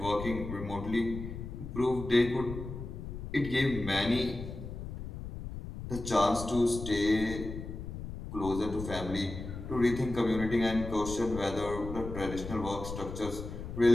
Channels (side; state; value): left; noise; rumble, 8 dB below the sound